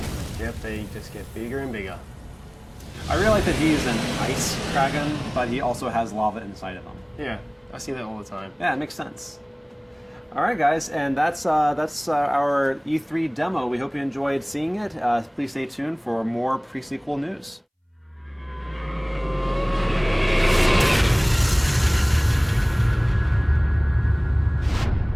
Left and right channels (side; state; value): both; identical; correlation 1.00